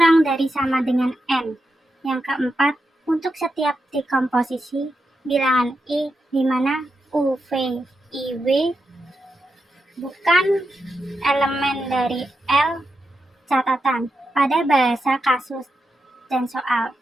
dari sama dengan N. Yang keempat, untuk setiap dekomposisi bilangan I di mana U, V, I, W bukan elemen dari L, catatan pada bahasa kasus dan soal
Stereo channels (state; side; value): normal; both; correlation 0.87